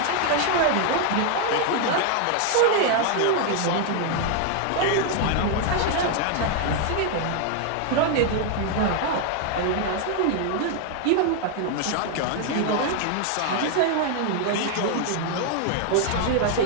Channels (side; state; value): both; different; correlation 0.00